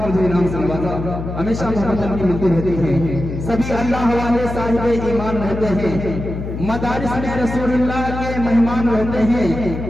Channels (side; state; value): left; noise; hum, 6 dB below the sound